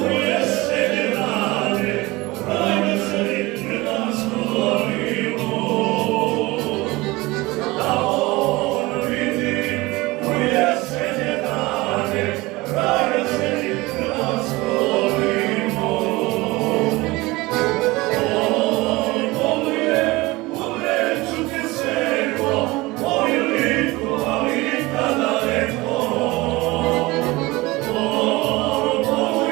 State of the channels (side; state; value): left; quieter; 21.4 dB